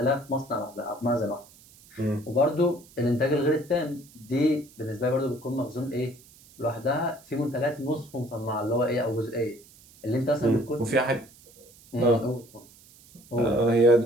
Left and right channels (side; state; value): right; noise; hiss, 25 dB below the sound